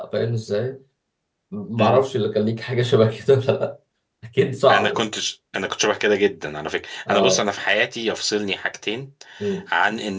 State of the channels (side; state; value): both; identical; correlation 1.00